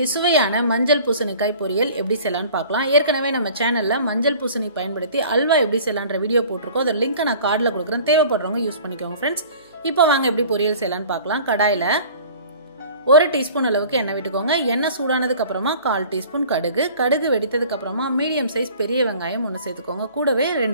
சுவையான மஞ்சள் பூசணிக்காய் பொரியல் எப்படி செய்யலாம்னு பார்க்கலாம். ஏற்கனவே நம்ம சேனல்ல மஞ்சள் பூசணி பயன்படுத்தி அல்வா எப்படி செய்யலாம்ன்ற வீடியோ போட்டுருக்கோம். அதோட லிங்க் நான் கார்ட்ல கொடுக்குறேன். தேவைப்படுறவங்க யூஸ் பண்ணிக்கோங்க फ्रेंड्स. இப்போ வாங்க எப்படி பொரியல் செய்யலாம்னு பார்க்கலாம். கடாயில 1 டீஸ்பூன் அளவுக்கு எண்ணெய் விட்டுக்கோங்க. எண்ணெய் சூடானதுக்கு அப்புறமா 1/4 டீஸ்பூன் கடுகு. கடுகு வெடித்ததுக்கு அப்புறமா மீடியம் சைஸ் பெரிய வெங்காயம் ஒன்னு சேர்த்துக்கோங்க. கூடவே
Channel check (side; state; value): both; inverted; correlation -0.46